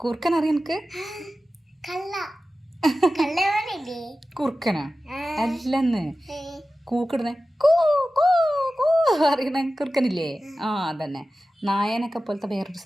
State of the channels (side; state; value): both; normal; correlation 0.95